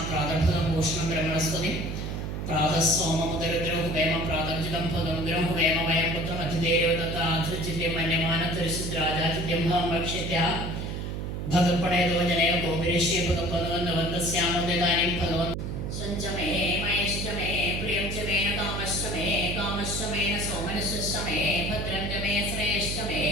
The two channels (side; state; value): right; noise; hum, 4 dB below the sound